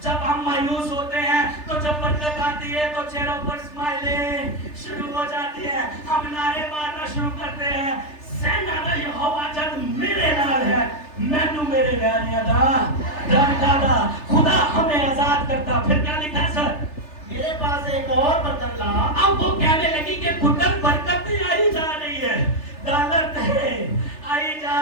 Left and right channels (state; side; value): late; right; 3.3 ms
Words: جب ہم مایوس ہوتے ہیں تو جب برکت آتی ہے تو چہروں پر اسمائلیں شروع ہو جاتی ہے. ہم نعرے مارنا شروع کرتے ہیں, سینا دا یہوہ جد میرے نال ہے مینو میرے ویریاں دا ڈر ڈادا. خدا ہمیں آزاد کرتا. پھر کیا لکھا سر؟ میرے پاس ایک اور برتن لا. اب وہ کہنے لگی کہ پتر برکت نہیں آئی جا رہی ہے, ڈالر تھے آئی جا